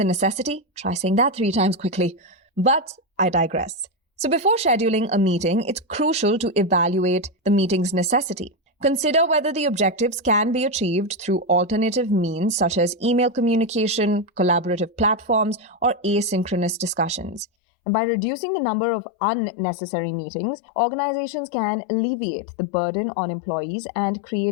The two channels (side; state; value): right; drops out; at 17.4 s